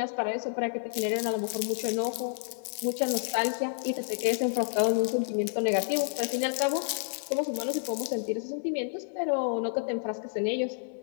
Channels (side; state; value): right; silent; 58 dB below the other